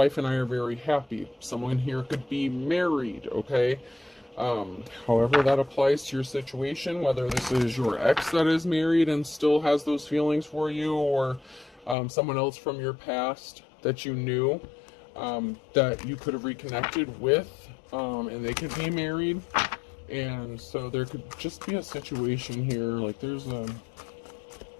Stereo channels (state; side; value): drops out; right; at 12.0 s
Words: and I are very happy. Someone here could be married, okay? However that applies to your situation, whether this is your ex that is married and still has those feelings for you, or someone else from your past that you knew, that you could have reconnected with, and they could be married. And so there could just be a situation here, like